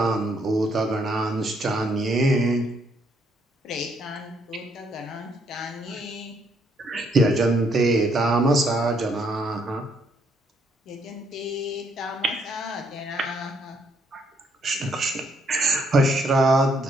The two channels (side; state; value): both; normal; correlation 0.71